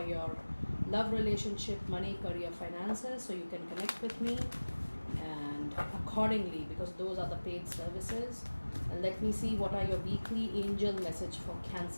your love, relationship, money, career, finances. So you can connect with me and accordingly, because those are the paid services. And let me see what are your weekly angel message for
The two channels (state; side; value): inverted; both; correlation -1.00